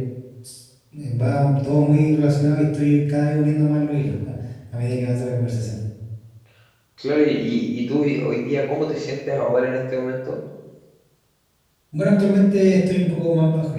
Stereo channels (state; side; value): identical; both; correlation 1.00